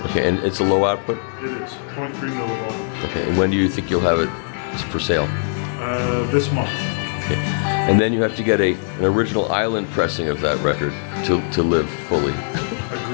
Okay, and it's a low output? It is. 0.3 millivolt. Okay, and when do you think you'll have it for sale? This month. Okay. And then you have to get an original island pressing of that record to live fully.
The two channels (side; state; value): right; silent; digital silence